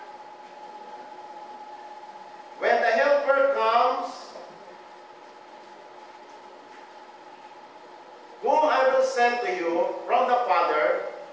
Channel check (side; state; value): both; identical; correlation 1.00